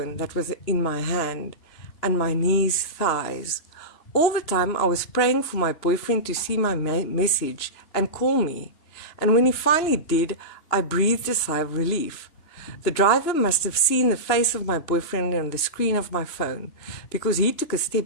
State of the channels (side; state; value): right; late; 3.0 ms